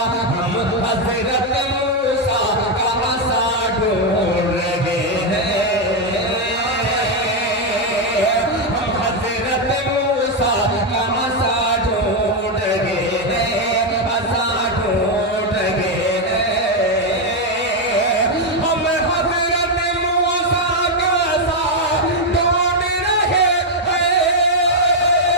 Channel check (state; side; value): normal; both; correlation 0.03